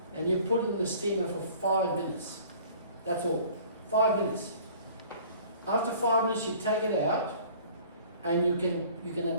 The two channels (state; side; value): inverted; both; correlation -0.50